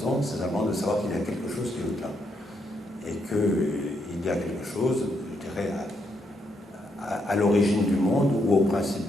c'est simplement de savoir qu'il y a quelque chose qui est au-delà. Et qu'il y a quelque chose, je dirais, à l'origine du monde ou au principe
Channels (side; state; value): both; normal; correlation 0.77